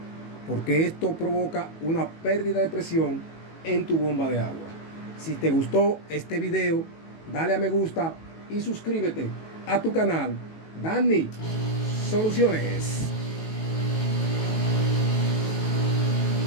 porque esto provoca una pérdida de presión en tu bomba de agua. Si te gustó este video, dale a me gusta y suscríbete a tu canal Danny Soluciones.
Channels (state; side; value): late; right; 18 ms